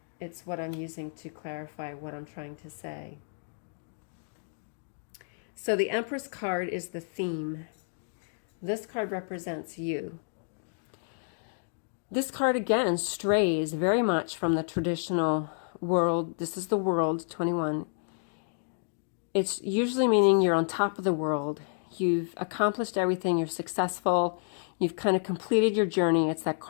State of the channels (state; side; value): silent; right; digital silence